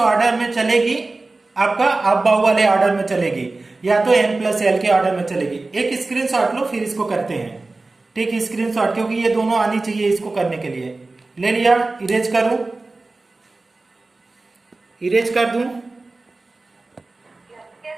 में चलेगी, आपका अबव वाले ऑर्डर में चलेगी, या तो n+l के ऑर्डर में चलेगी। एक स्क्रीनशॉट लो फिर इसको करते हैं। ठीक, स्क्रीनशॉट, क्योंकि ये दोनों आनी चाहिए इसको करने के लिए। ले लिया, इरेज करूं, इरेज कर दूं।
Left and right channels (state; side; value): quieter; left; 3.3 dB